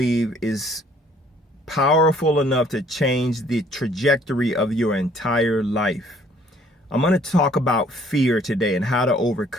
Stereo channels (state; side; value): normal; both; correlation 0.60